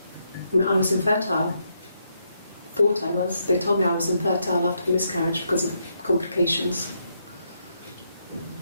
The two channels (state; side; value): inverted; both; correlation -0.78